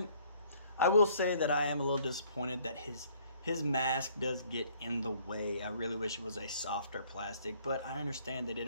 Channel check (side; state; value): both; inverted; correlation -0.61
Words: will say that I am a little disappointed that his mask does get in the way. I really wish it was a softer plastic, but I understand they